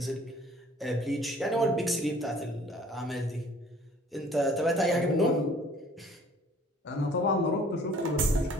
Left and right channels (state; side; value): normal; both; correlation 0.54